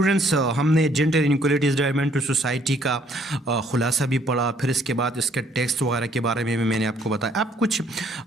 ہم نے جینڈر انیکولیٹیز ڈرائیون ٹو سوسائٹی کا خلاصہ بھی پڑھا، پھر اس کے بعد اس کے ٹیکسٹ وغیرہ کے بارے میں بھی میں نے آپ کو بتایا. اب کچھ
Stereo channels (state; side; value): normal; both; correlation 0.64